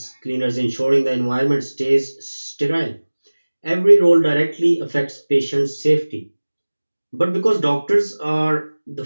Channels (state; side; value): inverted; both; correlation -1.00